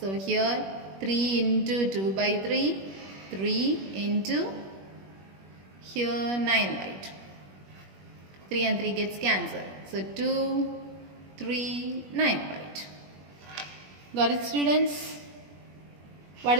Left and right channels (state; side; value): late; left; 21 ms